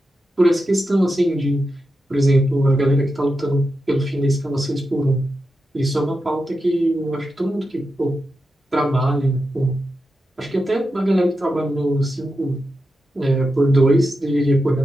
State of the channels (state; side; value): normal; both; correlation 0.89